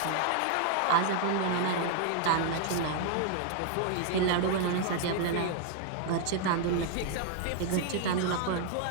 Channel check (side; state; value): both; different; correlation 0.00